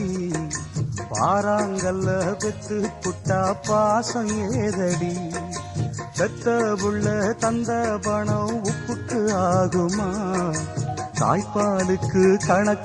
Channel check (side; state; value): both; identical; correlation 1.00